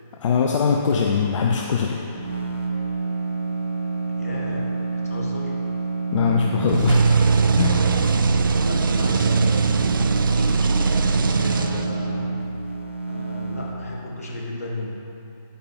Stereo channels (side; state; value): both; inverted; correlation -0.76